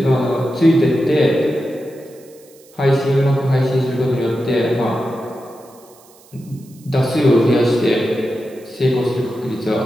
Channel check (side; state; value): right; noise; hiss, 27 dB below the sound